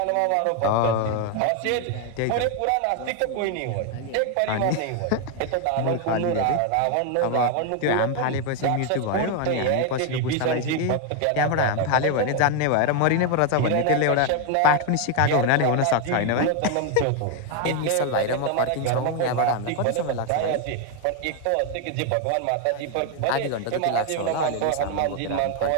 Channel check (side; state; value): both; different; correlation 0.01